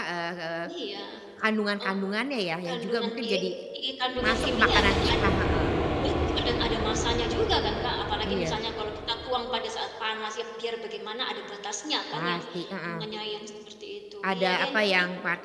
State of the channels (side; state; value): both; identical; correlation 1.00